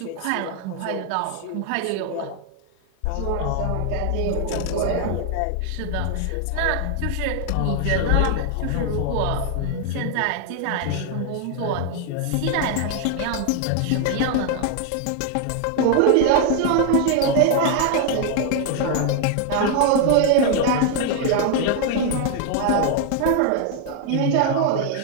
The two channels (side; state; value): both; different; correlation 0.00